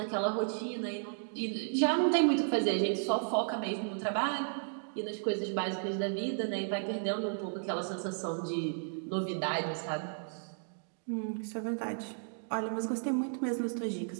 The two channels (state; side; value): silent; left; digital silence